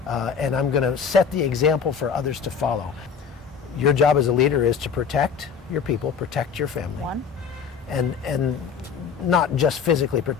and I'm going to set the example for others to follow. Your job as a leader is to protect your people, protect your family, and not just physically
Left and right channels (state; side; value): quieter; right; 6.6 dB